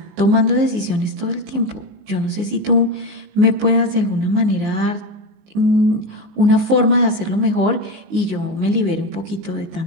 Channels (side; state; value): left; late; 19 ms